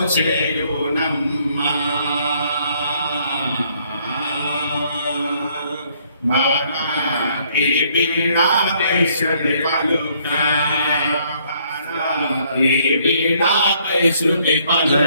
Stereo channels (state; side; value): inverted; both; correlation -0.66